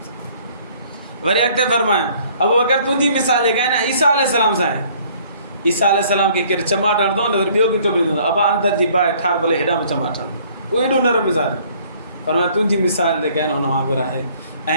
सां। वरी अॻिते फरमायो अबू बकर तुंहिंजी मिसाल जेका आहे न ईसा अलैहिस्सलाम सां आहे। ईसा अलैहिस्सलाम खे केरु चमाट हणंदो न वरी ॿियो बीठो ॿुधंदो अबा अंदरि जी बाहि ठार भले हेॾा में चमाट हणंदो, उहो एॾो नरम मिज़ाज। पर तुंहिंजी मिसाल जेका आहे न हुन वांगुरु आहे।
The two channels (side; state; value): both; inverted; correlation -0.58